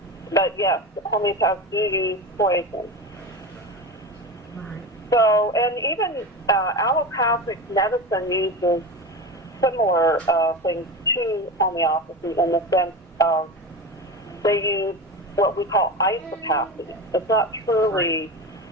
But yes, homeopaths do use poison. Right. So, and even allopathic medicine uses similar things to homeopathy in the sense of they use what we call isopathy. It's not truly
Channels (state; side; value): normal; both; correlation 0.25